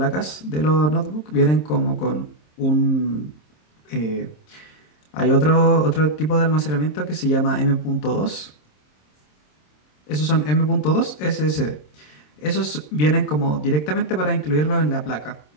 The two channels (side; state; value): right; late; 27 ms